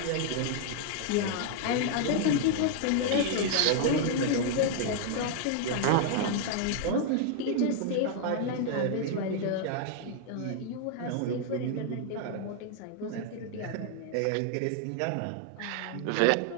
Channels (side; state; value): both; different; correlation 0.00